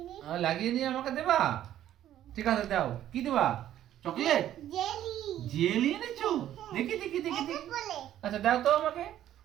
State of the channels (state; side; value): quieter; left; 11.9 dB